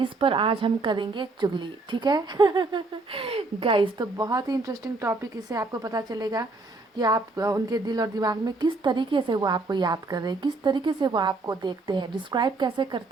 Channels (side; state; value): left; quieter; 3.4 dB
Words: पर आज हम करेंगे चुगली, ठीक है। गाइस, तो बहुत ही इंटरेस्टिंग टॉपिक, इससे आपको पता चलेगा कि आप उनके दिल और दिमाग में किस तरीके से वो आपको याद कर रहे हैं, किस तरीके से वो आपको देखते हैं, डिस्क्राइब कैसे